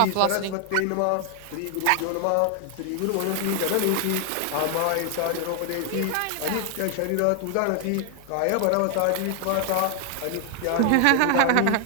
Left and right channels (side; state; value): both; different; correlation 0.00